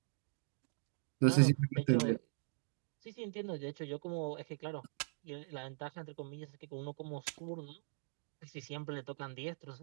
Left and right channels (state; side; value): silent; left; digital silence